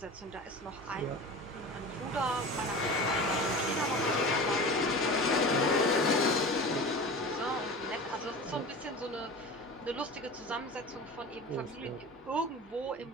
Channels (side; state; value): both; normal; correlation 0.33